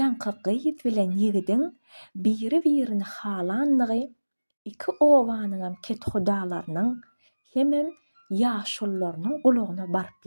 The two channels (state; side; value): inverted; both; correlation -1.00